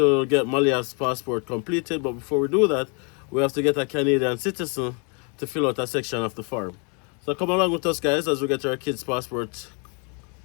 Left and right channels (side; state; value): right; quieter; 35.4 dB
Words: get Malia's passport completed. But before we do that, we have to get a Canadian citizen to fill out a section of the form. So come along with us guys as we get our kids' passport